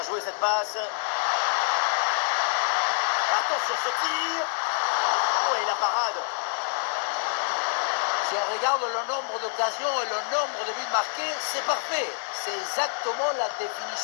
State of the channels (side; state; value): right; silent; 56 dB below the other